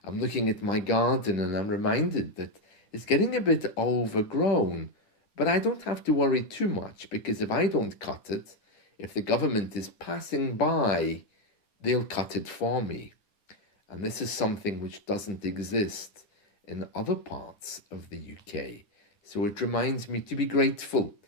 I'm looking at my garden and I'm reminded that it's getting a bit overgrown, but I don't have to worry too much because if I don't cut it, if the government is passing by, they'll cut it for me. And this is something which doesn't exist in other parts of the UK. So it reminds me to be grateful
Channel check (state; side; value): late; right; 10 ms